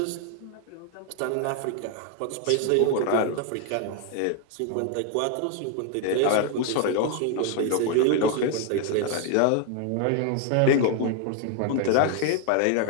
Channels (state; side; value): different; both; correlation 0.00